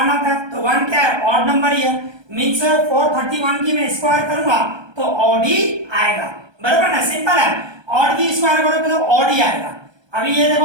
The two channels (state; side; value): late; left; 1.3 ms